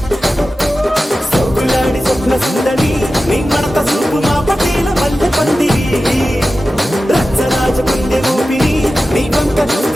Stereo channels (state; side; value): normal; both; correlation 0.94